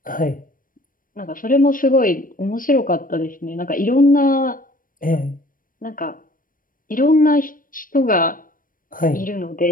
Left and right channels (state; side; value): late; right; 0.40 ms